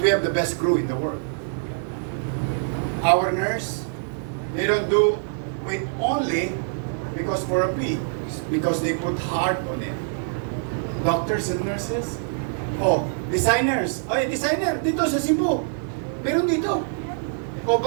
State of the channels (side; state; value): left; silent; digital silence